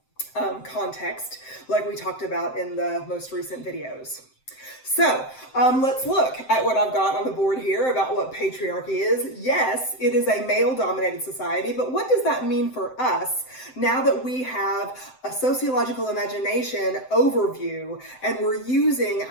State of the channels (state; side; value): late; right; 7.8 ms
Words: context, like we talked about in the most recent videos. So let's look at what I've got on the board here about what patriarchy is. Yes, it is a male-dominated society, but what does that mean for us now that we have a sociological imagination overview and we're using